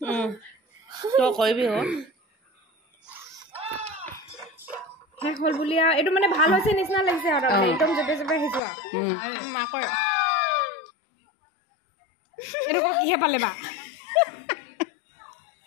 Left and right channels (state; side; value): drops out; right; at 8.6 s